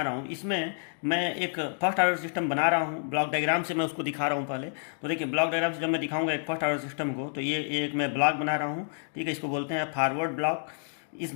रहा हूँ। इसमें मैं एक फर्स्ट ऑर्डर सिस्टम बना रहा हूँ, ब्लॉक डायग्राम से मैं उसको दिखा रहा हूँ पहले। तो देखिए ब्लॉक डायग्राम से जब मैं दिखाऊंगा एक फर्स्ट ऑर्डर सिस्टम को, तो ये एक मैं ब्लॉक बना रहा हूँ, ठीक है। इसको बोलते हैं फॉरवर्ड ब्लॉक। इस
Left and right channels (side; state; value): right; silent; digital silence